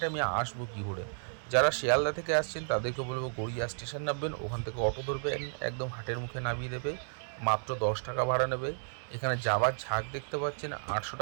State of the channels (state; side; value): silent; left; digital silence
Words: আমি আসবো কী করে। যারা শিয়ালদা থেকে আসছেন তাদেরকে বলবো গড়িয়া স্টেশন নামবেন, ওখান থেকে অটো ধরবেন, একদম হাটের মুখে নামিয়ে দেবে, মাত্র 10 টাকা ভাড়া নেবে। এখানে জাবার ঝাঁক দেখতে পাচ্ছেন, 800